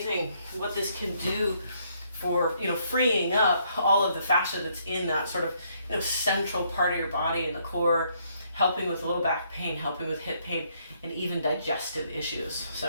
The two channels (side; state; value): both; inverted; correlation -0.70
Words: what this can do for, freeing up all of the fascia that's in that sort of, central part of your body in the core, helping with low back pain, helping with hip pain, and even digestive issues.